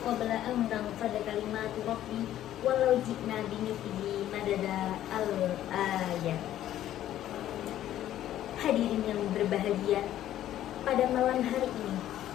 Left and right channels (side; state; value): right; quieter; 12.4 dB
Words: an tanfada kalimatu rabbi walau ji'na bimithlihi madada al-ayat. Hadirin yang berbahagia, pada malam hari ini